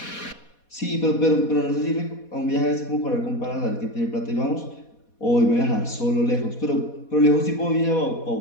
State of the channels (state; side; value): late; right; 4.2 ms